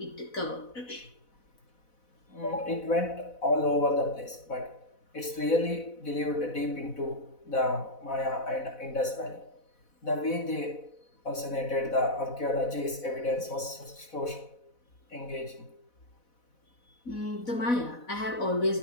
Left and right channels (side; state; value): right; late; 4.0 ms